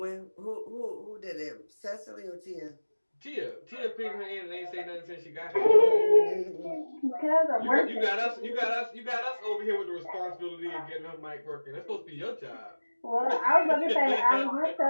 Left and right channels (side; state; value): both; inverted; correlation -1.00